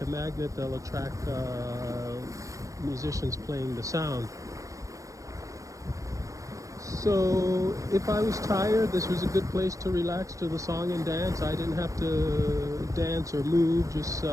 a magnet, they'll attract musicians playing the sound. So if I was tired, this was a good place to relax to the song and dance. I didn't have to dance or move, just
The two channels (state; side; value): late; left; 0.16 ms